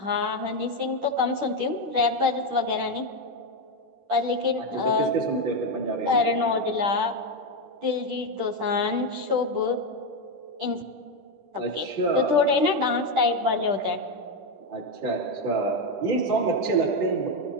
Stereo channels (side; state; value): left; late; 10 ms